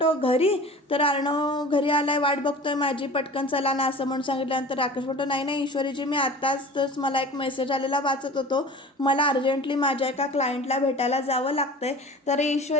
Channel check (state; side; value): normal; both; correlation 0.40